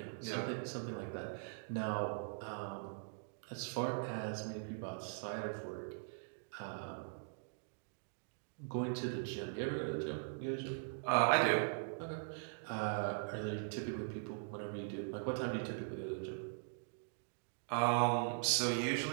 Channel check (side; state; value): left; silent; digital silence